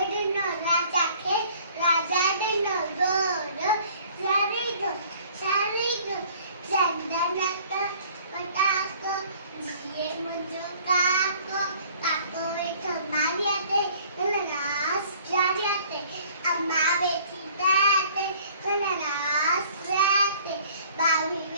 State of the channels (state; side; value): inverted; both; correlation -0.54